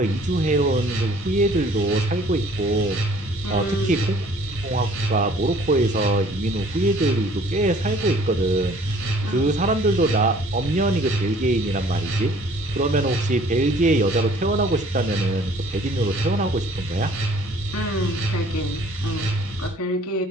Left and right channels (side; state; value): both; normal; correlation 0.55